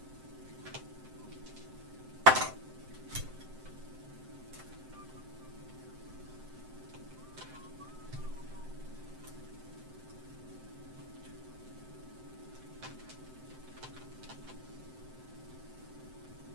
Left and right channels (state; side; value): late; left; 7.7 ms